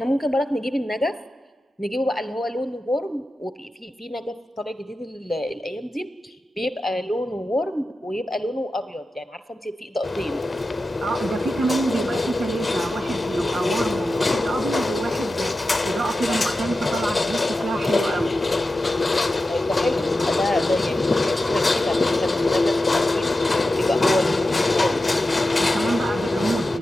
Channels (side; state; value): both; normal; correlation 0.92